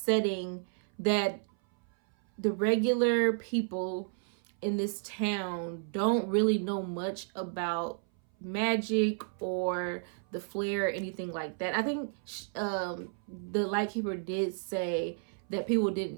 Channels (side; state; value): left; silent; 56 dB below the other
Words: that the regular people in this town don't really know much about magic or the flare or anything like that. I think the Lightkeeper did say that people